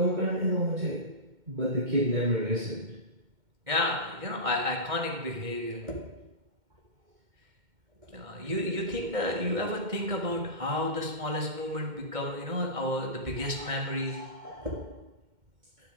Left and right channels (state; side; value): late; left; 2.1 ms